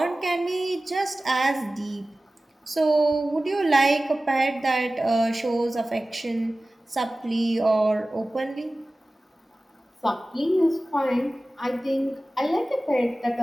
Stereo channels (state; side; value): normal; both; correlation 0.97